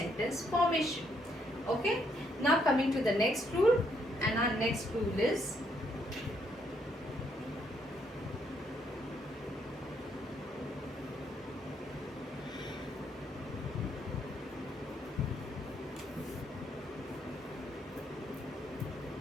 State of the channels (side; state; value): both; normal; correlation 0.72